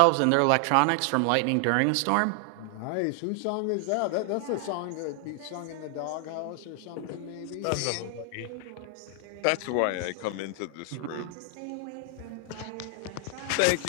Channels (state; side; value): different; both; correlation 0.00